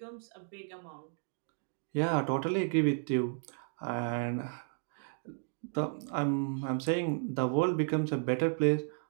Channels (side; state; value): left; silent; 55 dB below the other